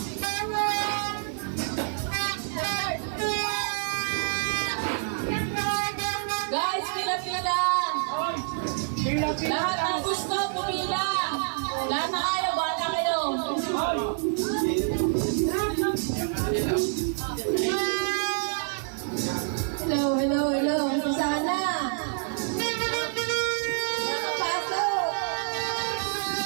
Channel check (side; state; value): left; silent; 56 dB below the other